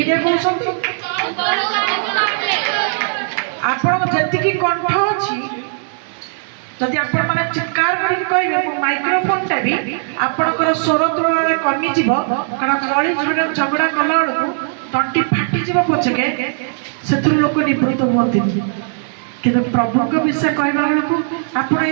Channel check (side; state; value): left; silent; 68 dB below the other